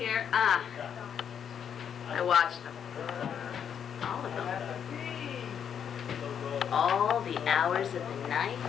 I watched them. All of them. All the hours of the night.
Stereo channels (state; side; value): quieter; right; 8.2 dB